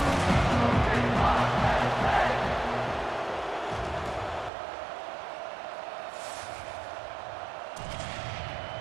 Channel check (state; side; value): drops out; left; at 4.5 s